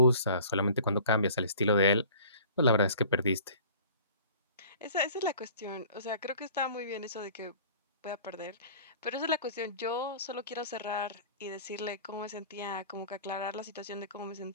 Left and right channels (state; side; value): inverted; both; correlation -0.46